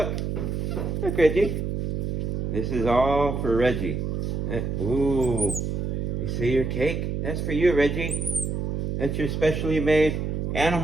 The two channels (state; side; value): noise; right; hum, 1 dB below the sound